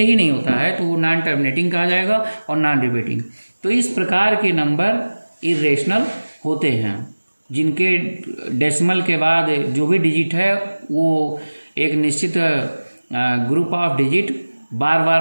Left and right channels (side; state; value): both; inverted; correlation -1.00